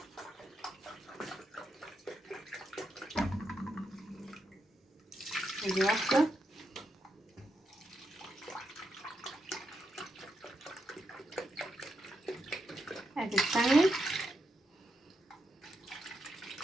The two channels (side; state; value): both; normal; correlation 0.84